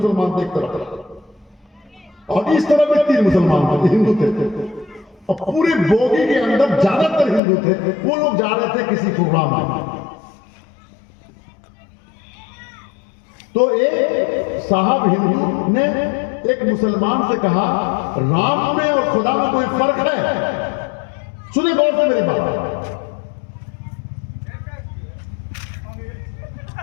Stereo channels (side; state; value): right; drops out; at 7.4 s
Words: थे एक तरफ, और इस तरफ भी 3 मुसलमान थे, हिंदू थे। और पूरी बोगी के अंदर ज्यादातर हिंदू थे। वो लोग जा रहे थे किसी प्रोग्राम में। तो एक साहब हिंदू ने एक मुसलमान से कहा, राम में और खुदा में कोई फर्क है? सुनिए गौर से मेरी बात।